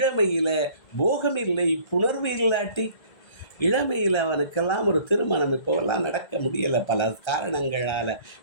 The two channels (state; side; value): late; right; 1.7 ms